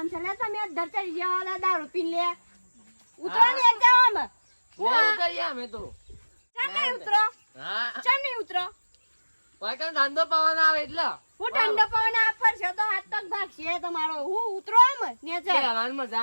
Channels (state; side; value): inverted; both; correlation -1.00